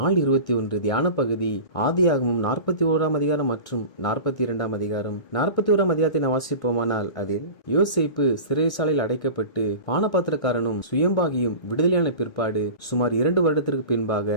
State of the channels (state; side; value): late; right; 1.6 ms